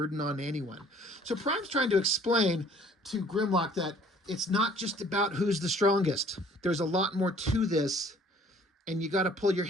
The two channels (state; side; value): normal; both; correlation 0.56